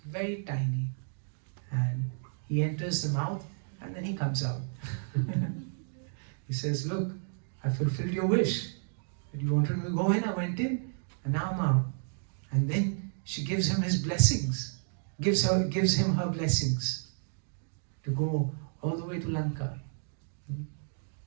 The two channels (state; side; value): silent; left; digital silence